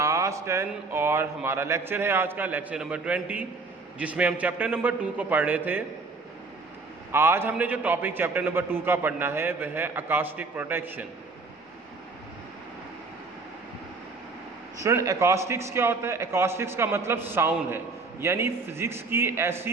10 और हमारा लेक्चर है आज का लेक्चर नंबर 20, जिसमें हम चैप्टर नंबर 2 को पढ़ रहे थे। आज हमने जो टॉपिक चैप्टर नंबर 2 का पढ़ना है वह है अकॉस्टिक प्रोटेक्शन। स्टूडेंट, अकॉस्टिक्स क्या होता है? अकॉस्टिक्स का मतलब साउंड है, यानी फिजिक्स की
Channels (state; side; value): quieter; left; 3.8 dB